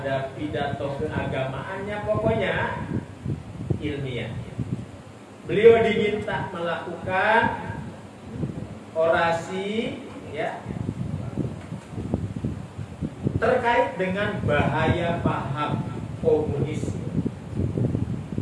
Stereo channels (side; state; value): both; identical; correlation 1.00